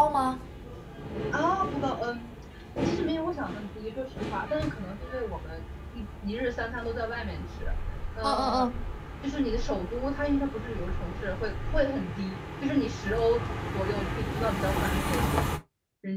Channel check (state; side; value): identical; both; correlation 1.00